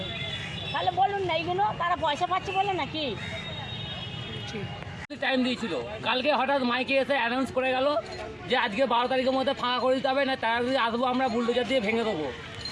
তাহলে বলুন না এইগুলো তারা পয়সা পাচ্ছে বলে নাকি? টাইম দিয়েছিল, কালকে হঠাৎ মাইকে এসে অ্যানাউন্স করে গেল যে আজকে 12 তারিখের মধ্যে ফাঁকা করে দিতে হবে, না তারা যদি আসবো আমরা বুলডোজার দিয়ে ভেঙে দেবো,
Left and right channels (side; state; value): both; identical; correlation 1.00